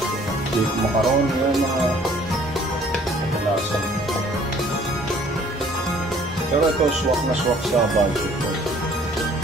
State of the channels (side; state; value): both; normal; correlation 0.57